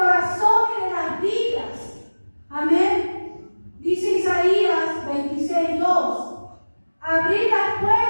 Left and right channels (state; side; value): inverted; both; correlation -1.00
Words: y de las vidas. Amén. Dice Isaías 26:2. Abrid las